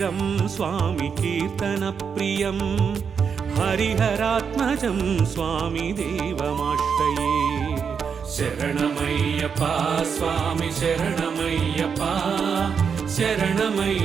స్వామి కీర్తనప్రియం హరిహరాత్మజం స్వామి దేవమాశ్రయే శరణమయ్యప్ప స్వామి శరణమయ్యప్ప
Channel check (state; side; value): quieter; left; 6.5 dB